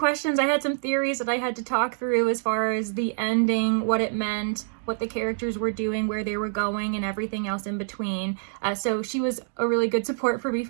I had some theories that I had to talk through as far as the ending, what it meant, what the characters were doing, where they were going, and everything else in between. So she was a really good support for me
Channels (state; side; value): silent; left; digital silence